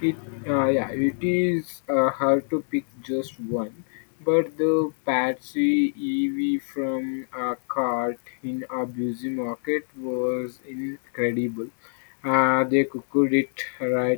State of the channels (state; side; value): silent; right; digital silence